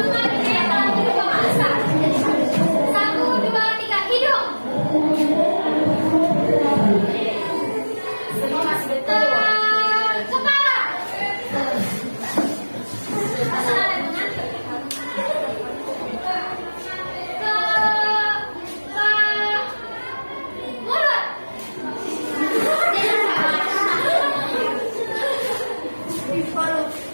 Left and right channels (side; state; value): both; inverted; correlation -1.00